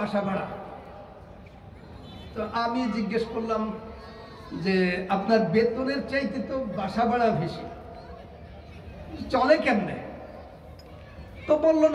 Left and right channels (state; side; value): identical; both; correlation 1.00